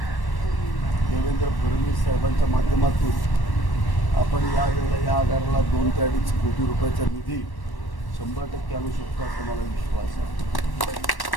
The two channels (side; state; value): right; late; 1.1 ms